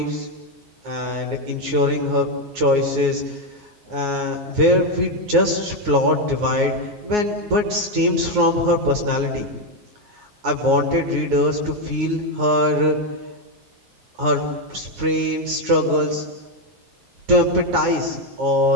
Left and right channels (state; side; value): late; left; 9.5 ms